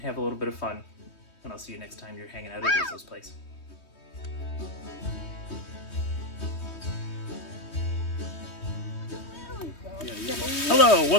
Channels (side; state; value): right; late; 3.2 ms